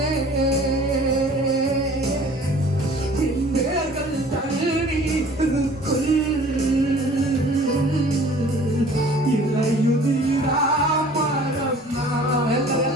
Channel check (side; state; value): both; normal; correlation 0.50